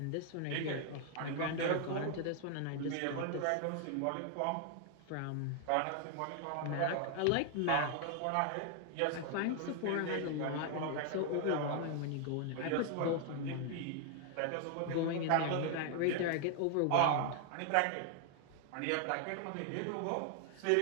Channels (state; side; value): different; both; correlation 0.00